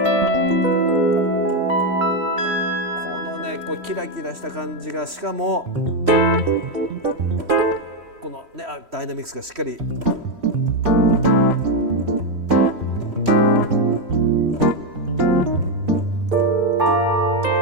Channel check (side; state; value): left; late; 3.1 ms